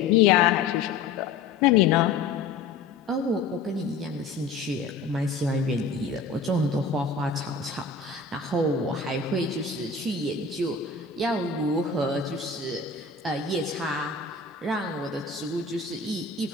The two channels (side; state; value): right; quieter; 4.5 dB